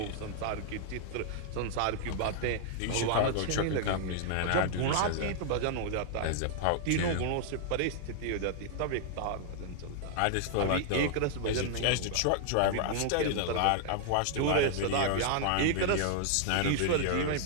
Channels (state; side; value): different; both; correlation 0.00